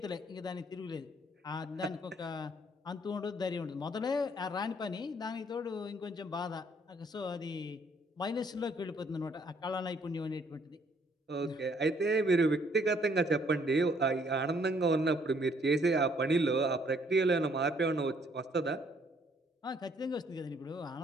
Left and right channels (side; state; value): both; normal; correlation 0.65